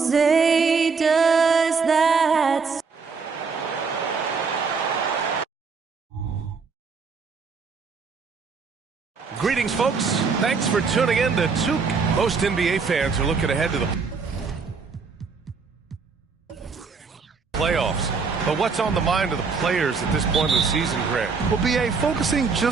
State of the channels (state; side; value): quieter; left; 5.1 dB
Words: say does that? Greetings, folks. Thanks for tuning in to Took. Most NBA fans are looking ahead to the playoffs. But what's on the mind of the players at this point of the season, Grant? Well, B.A., focusing